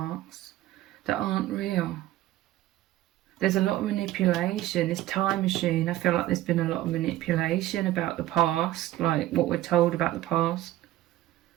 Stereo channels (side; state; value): left; quieter; 14.9 dB